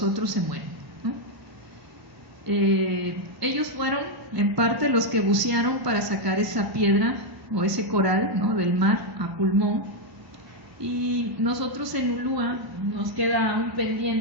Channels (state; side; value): normal; both; correlation 0.01